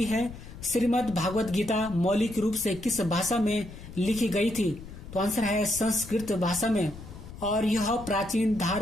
है, श्रीमद् भागवत गीता मौलिक रूप से किस भाषा में लिखी गई थी? तो आंसर है संस्कृत भाषा में और यह प्राचीन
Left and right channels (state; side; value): noise; left; rumble, 14 dB below the sound